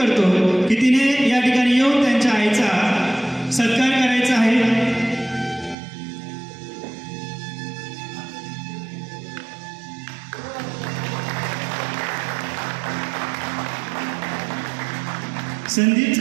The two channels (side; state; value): left; drops out; at 5.8 s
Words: की तिने या ठिकाणी येऊन त्यांच्या आईचा सत्कार करायचा आहे।